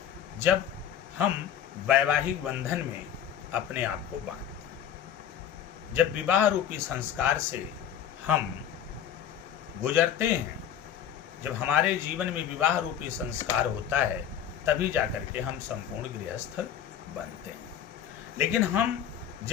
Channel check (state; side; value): quieter; right; 9.5 dB